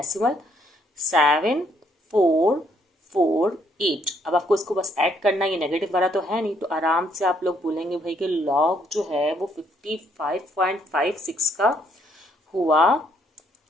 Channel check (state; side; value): normal; both; correlation 0.69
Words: 7448। अब आपको इसको बस ऐड करना है, ये नेगेटिव वाला तो है नहीं तो आराम से आप लोग बोलेंगे भाई कि लॉग जो है वो 55.56 का हुआ।